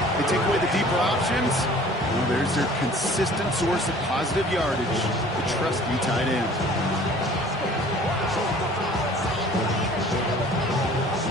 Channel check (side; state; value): both; normal; correlation 0.50